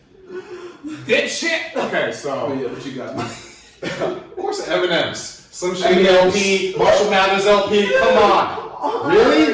Did shit! Okay, so. Oh, yeah, what you got? Of course, Eminem's. Slim Shady LP, Marshall Mathers LP, come on.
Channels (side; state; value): both; identical; correlation 1.00